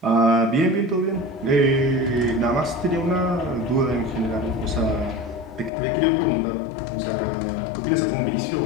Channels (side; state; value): right; drops out; at 5.7 s